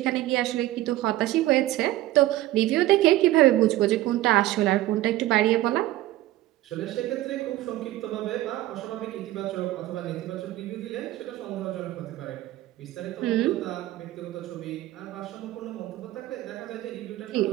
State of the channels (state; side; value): quieter; left; 15.8 dB